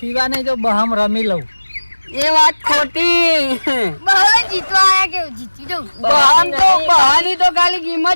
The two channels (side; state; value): both; inverted; correlation -1.00